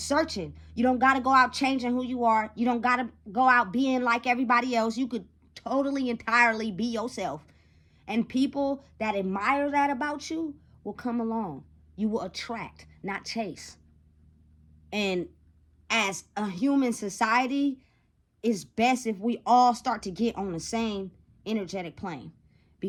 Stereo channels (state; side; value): identical; both; correlation 1.00